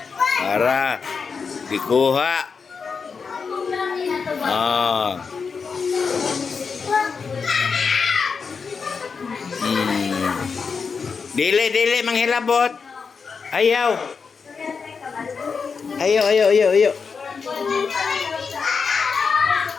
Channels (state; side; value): quieter; right; 5.4 dB